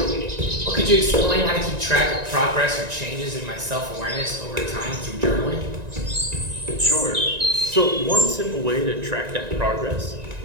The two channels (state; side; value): late; left; 1.9 ms